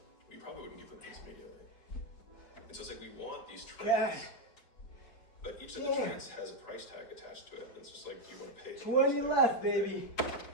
You probably wouldn't give them things immediately. And so it's like we want these traits, God. but each of the traits has a price tag attached to it. And it's just like, do you want to pay? the 20 price tag left, for the thing? baby.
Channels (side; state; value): right; late; 4.7 ms